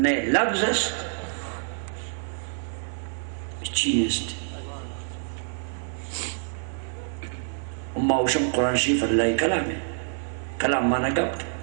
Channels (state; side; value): silent; left; 60 dB below the other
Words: لفظ است چین است اما اوشم قرآن شریف اللہ کلام ہے کلام مانا گپ